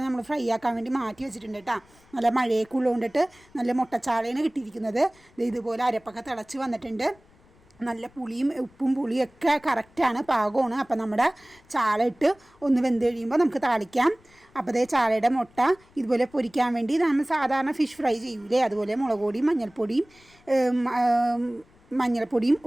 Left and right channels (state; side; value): noise; left; rumble, 29 dB below the sound